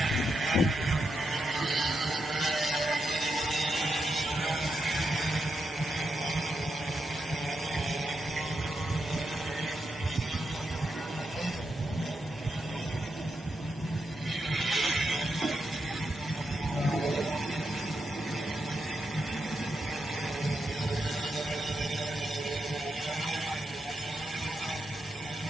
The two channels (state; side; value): normal; both; correlation 0.85